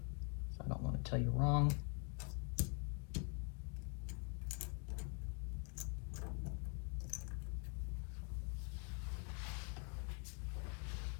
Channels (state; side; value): quieter; right; 35.6 dB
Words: I don't want to tell you wrong.